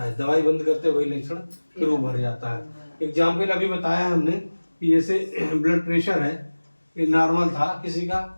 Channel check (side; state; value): both; inverted; correlation -1.00